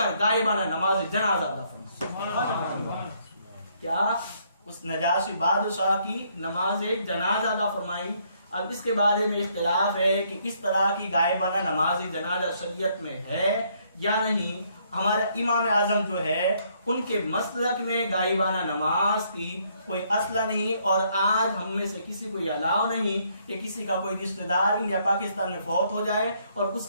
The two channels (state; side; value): inverted; both; correlation -0.69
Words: غائبانہ نماز جنازہ ادا فرمائی. کیا اس نجاشی بادشاہ کی نماز جنازہ ادا فرمائی. اب اس کے بارے میں اختلاف ہے کہ اس طرح کی غائبانہ نماز جنازہ شریعت میں ہے یا نہیں. ہمارا امام اعظم جو ہے ان کے مسلک میں غائبانہ نماز کی کوئی اصل نہیں، اور آج ہم میں سے کسی کو یہ الاؤ نہیں کہ کسی کا کوئی رشتہ دار انڈیا پاکستان میں فوت ہو جائے اور اس